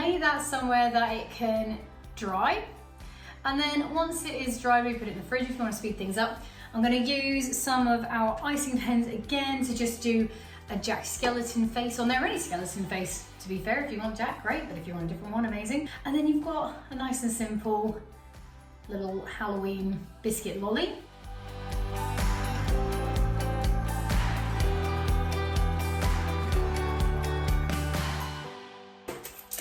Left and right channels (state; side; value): identical; both; correlation 1.00